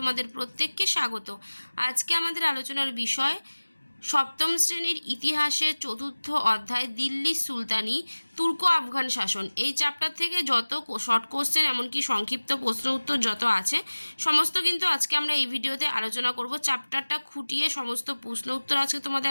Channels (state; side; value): inverted; both; correlation -1.00